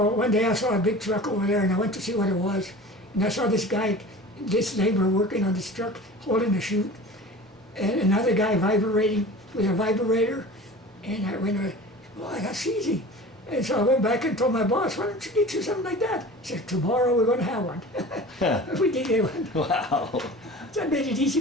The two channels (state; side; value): normal; both; correlation 0.38